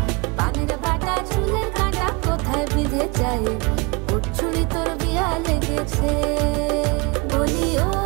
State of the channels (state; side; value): quieter; left; 28.2 dB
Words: পানের বাটা চুলের কাঁটা কোথায় বিঁধে যায়, চুড়ি তোর বিয়া লেগেছে। বলি ও